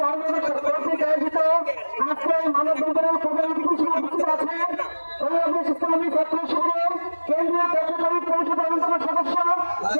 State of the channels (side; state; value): both; inverted; correlation -1.00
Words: কর্তৃক আয়োজিত আজকে মানববন্ধনের প্রধান অতিথি উপস্থিত আছে বাংলাদেশ ইসলামী ছাত্র শিবিরের কেন্দ্রীয় কার্যকরী পরিষদ অন্যতম সদস্য,